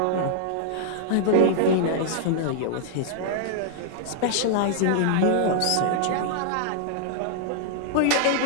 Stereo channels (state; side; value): different; both; correlation -0.01